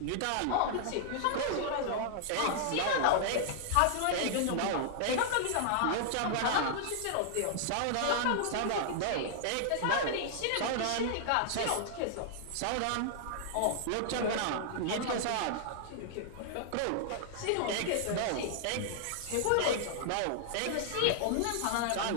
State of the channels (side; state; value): both; different; correlation -0.01